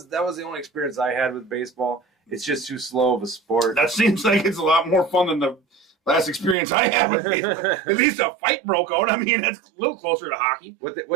the only experience I had with baseball. It's just too slow of a sport. That seems like it's a lot more fun than the last experience I had with baseball. At least a fight broke out. I mean, that's a little closer to hockey.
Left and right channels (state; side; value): drops out; left; at 6.6 s